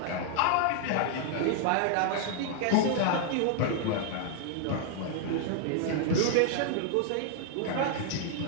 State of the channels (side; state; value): both; different; correlation 0.00